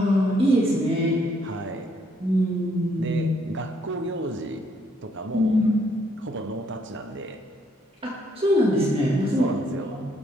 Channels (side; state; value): both; normal; correlation 0.70